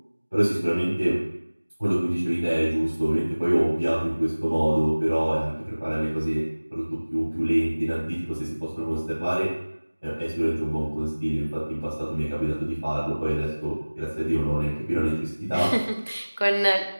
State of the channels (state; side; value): inverted; both; correlation -1.00